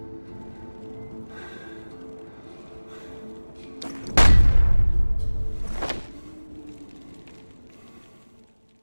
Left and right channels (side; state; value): both; inverted; correlation -1.00